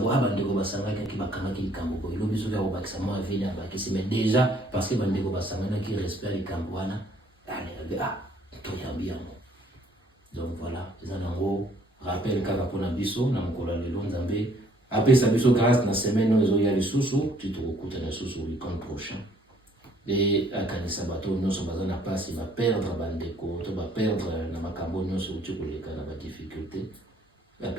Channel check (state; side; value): normal; both; correlation 0.62